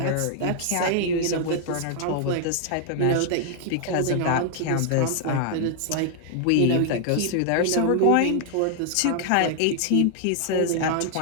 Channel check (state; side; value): different; both; correlation 0.00